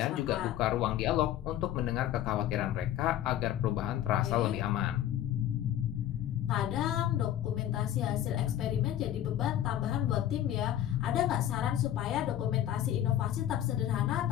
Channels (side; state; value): right; quieter; 11.7 dB